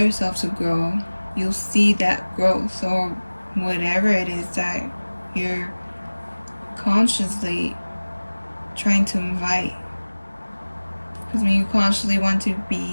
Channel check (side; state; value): both; inverted; correlation -1.00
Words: to grow, you'll see that growth, or whatever it is that you're consciously trying to invite. Because when you consciously want to